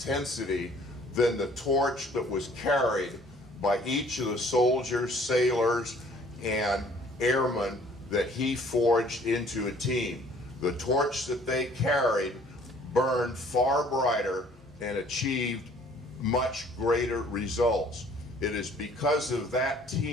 than the torch that was carried by each of the soldiers, sailors, and airmen that he forged into a team. The torch that they carried burned far brighter and achieved much greater results. It is because of that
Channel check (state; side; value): normal; both; correlation 0.56